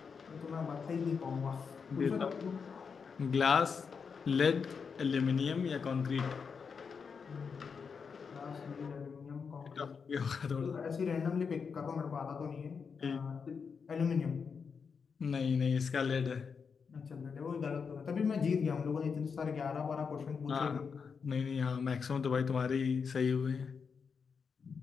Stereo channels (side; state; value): right; quieter; 5.8 dB